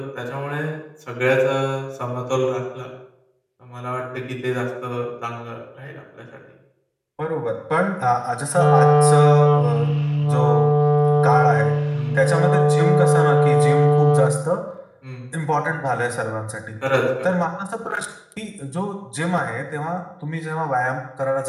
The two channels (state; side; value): identical; both; correlation 1.00